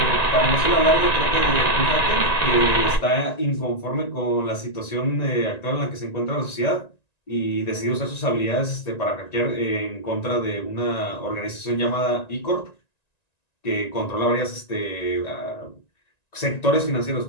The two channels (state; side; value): late; right; 1.9 ms